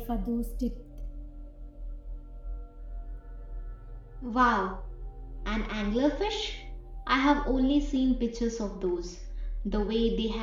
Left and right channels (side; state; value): both; identical; correlation 1.00